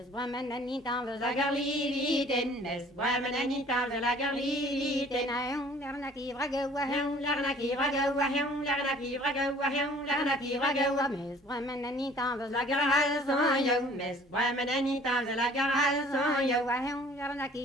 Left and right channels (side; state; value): both; normal; correlation 0.52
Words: Woman and eat on the Zagarliten, Miss Woman and eat on the Lagarliten, I am Larnaki Ragawa, Larnaki Ragawa, Larnaki Ragawa, Larnaki Ragawa, Miss Woman and eat on the Lagarhals on you, Miss Woman and eat on the Lagarhals on you,